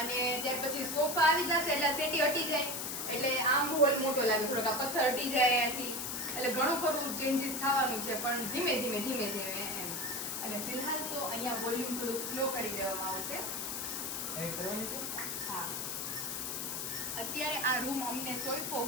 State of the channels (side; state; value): left; noise; hiss, 3 dB below the sound